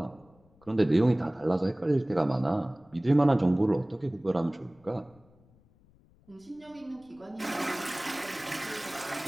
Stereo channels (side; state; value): left; noise; rumble, 29 dB below the sound